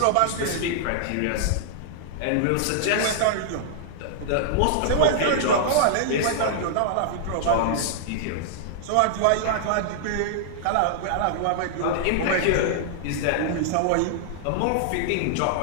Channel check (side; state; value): both; different; correlation -0.01